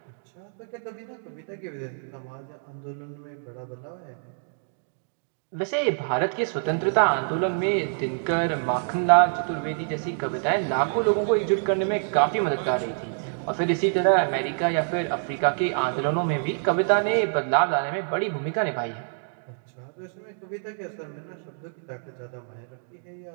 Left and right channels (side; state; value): left; silent; digital silence